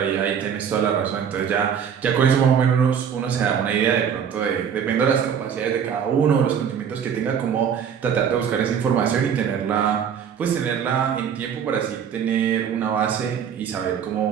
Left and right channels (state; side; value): quieter; left; 7.8 dB